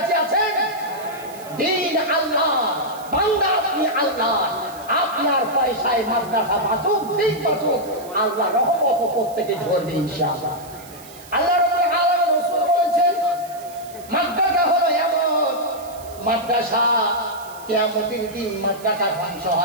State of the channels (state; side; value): noise; right; hiss, 20 dB below the sound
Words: আছেন? দিন আল্লাহ, বান্দা আপনি আল্লাহ, আপনার পয়সায় মাদ্রাসা বাঁচুক, দিন বাঁচুক, আল্লাহ রহমত প্রত্যেকে ঝরবে ইনশাআল্লাহ। আল্লাহ রাব্বুল আলামিন রাসূল বলেছেন, মাদ্রাসা হলো এমন মাদ্রাসা, কিয়ামতের দিন মাদ্রাসা ধ্বংস